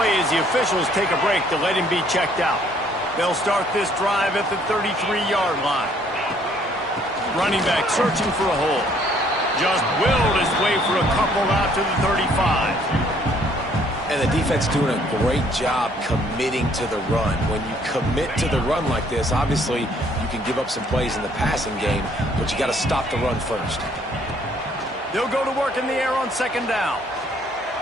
as the officials take a break to let him be checked out. They'll start this drive at the 33-yard line. Running back searching for a hole. Just willed his way for a couple out to the 35. And the defense doing a great job committing to the run. When you commit to the run like this, obviously you can give up some plays in the passing game, but you got to stop the run first. They'll go to work in the air on 2nd down.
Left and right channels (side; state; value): both; normal; correlation 0.63